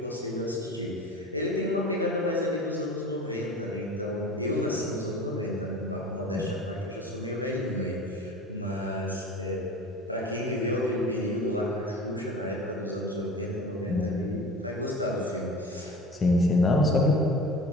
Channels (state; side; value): normal; both; correlation 0.37